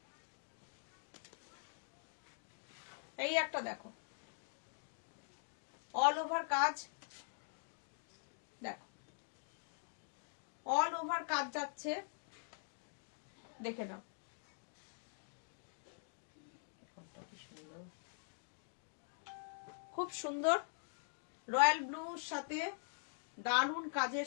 এই একটা দেখো অল ওভার কাজ, দেখো অল ওভার কাজ যাচ্ছে, দেখে নাও। খুব সুন্দর রয়্যাল ব্লুর সাথে দারুন কাজের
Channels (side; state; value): right; silent; digital silence